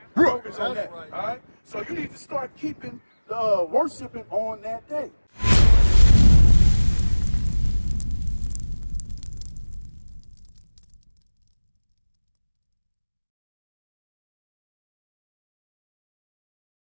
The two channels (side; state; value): both; inverted; correlation -1.00